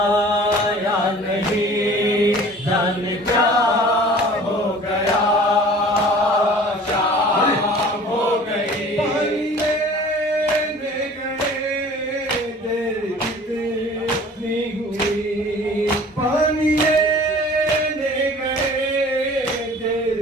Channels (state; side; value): normal; both; correlation 0.46